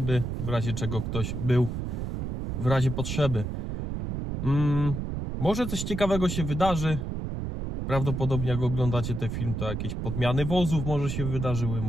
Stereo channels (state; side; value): noise; right; rumble, 4 dB below the sound